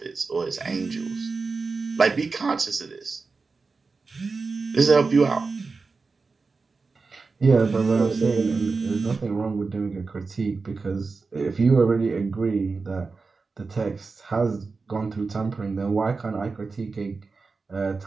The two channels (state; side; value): quieter; left; 4.3 dB